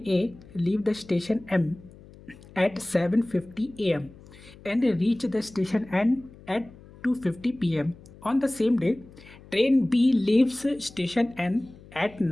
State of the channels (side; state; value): left; noise; hum, 21 dB below the sound